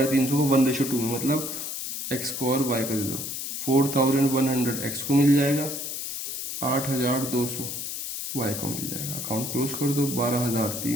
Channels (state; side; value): noise; left; hiss, 5 dB below the sound